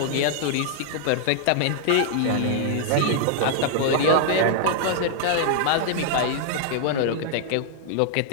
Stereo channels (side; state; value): both; different; correlation -0.01